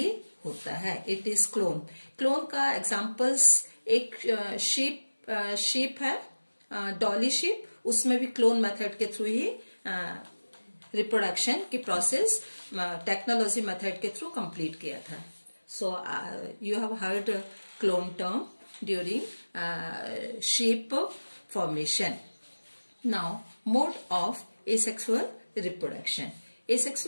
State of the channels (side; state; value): both; inverted; correlation -1.00